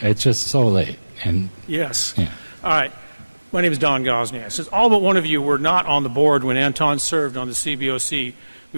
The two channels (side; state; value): both; inverted; correlation -1.00